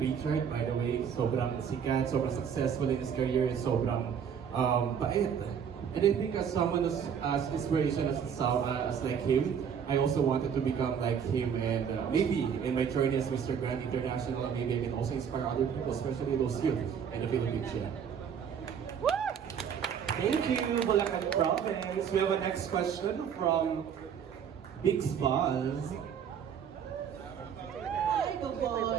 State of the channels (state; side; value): quieter; left; 7.6 dB